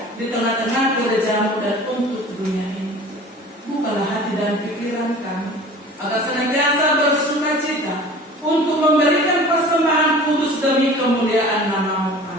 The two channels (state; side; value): normal; both; correlation 0.43